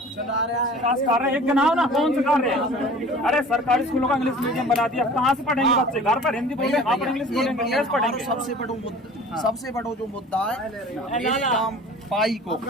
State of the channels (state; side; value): normal; both; correlation 0.44